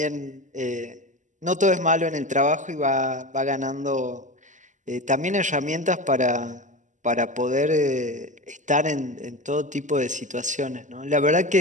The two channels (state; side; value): late; left; 0.36 ms